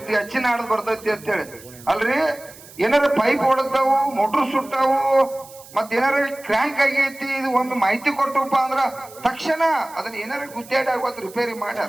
ಅಚ್ಚಿ ನಾಡ್ದು ಬರ್ತೈತಿ ಅಂತ ಹೇಳಿ. ಅಲ್ರಿ ಏನಾರ ಪೈಪ್ ಹೊಡೆದವು, ಮೋಟ್ರ್ ಸುಟ್ಟಾವು, ಮತ್ ಏನಾರ ಕ್ರ್ಯಾಂಕ್ ಆಗೈತಿ, ಇದು ಒಂದು ಮಾಹಿತಿ ಕೊಟ್ಟಪ್ಪ ಅಂದ್ರ ತಕ್ಷಣ ಅದನ್ನ ಏನಾರ ಗುದ್ದಾಡಿ ಆಗೋದು ರಿಪೇರಿ ಮಾಡ್ಯಾರ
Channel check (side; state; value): right; noise; hiss, 20 dB below the sound